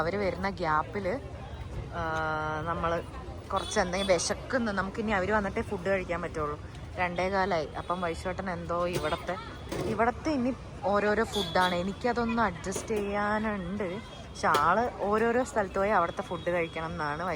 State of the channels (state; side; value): identical; both; correlation 1.00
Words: വരുന്ന ഗ്യാപ്പിൽ നമ്മൾ കുറച്ച് എന്തെങ്കിലും വിശക്കുന്നു. നമുക്കിനി അവർ വന്നിട്ടേ ഫുഡ് കഴിക്കാൻ പറ്റുള്ളൂ. 2:15 അപ്പം വൈശോട്ടൻ എന്തോ ഇവിടത്തെ ഇനി ഓരോരോ ഫുഡാണ്. എനിക്കതൊന്ന് അഡ്ജസ്റ്റ് ചെയ്യാനുണ്ട്. പക്ഷെ ആള് ഓരോരോ സ്ഥലത്ത് പോയി അവിടുത്തെ ഫുഡ് കഴിക്കണം എന്നാണ്